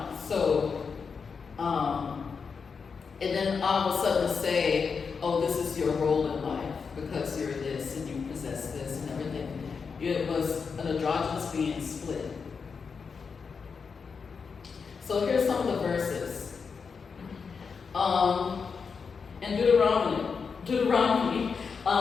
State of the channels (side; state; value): right; quieter; 5.6 dB